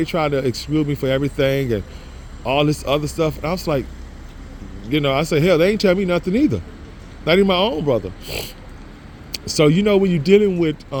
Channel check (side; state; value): both; identical; correlation 1.00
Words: trying to exclude me for everything and all this other stuff. And I was like, you know, I said, hell, they ain't tell me nothing either, not even my own brother. So, you know, when you're dealing with